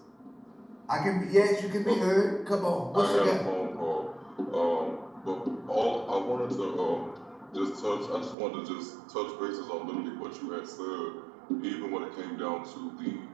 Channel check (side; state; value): left; drops out; at 8.3 s